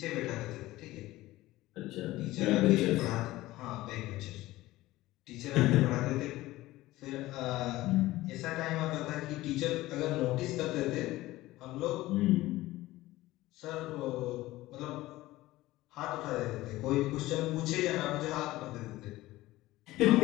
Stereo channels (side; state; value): right; quieter; 17.5 dB